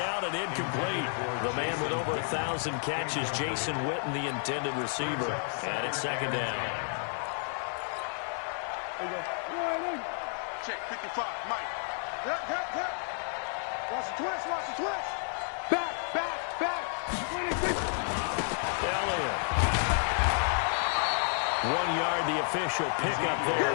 out and incomplete. The man with over 1,000 catches, Jason Witten, the intended receiver. And it's second down. There you go. Check 55, Mike. Yep. Watch the twist. Back. 26. Elliott. 1 yard, the official pickup there,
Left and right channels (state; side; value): silent; right; 57 dB below the other